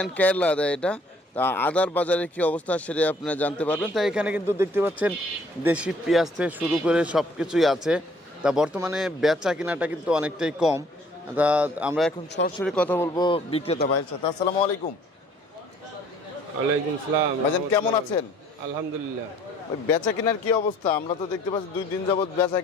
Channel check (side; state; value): both; normal; correlation 0.59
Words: কেরলা আদা এটা। তা আদার বাজারে কী অবস্থা সেটা আপনারা জানতে পারবেন। তাই এখানে কিন্তু দেখতে পাচ্ছেন দেশি পেঁয়াজ থেকে শুরু করে সব কিছুই আছে। তা বর্তমানে বেচা কেনাটা কিন্তু অনেকটাই কম। তা আমরা এখন সরাসরি কথা বলবো বিক্রেতা ভাইয়ের সাথে। আসসালামু আলাইকুম। ওয়ালাইকুম সালাম। ভাইজান কেমন আছেন? আলহামদুলিল্লাহ। ওই বেচা কেনার কি অবস্থা? আমরা তো দেখতে পাচ্ছি 2 দিন যাবত বেচা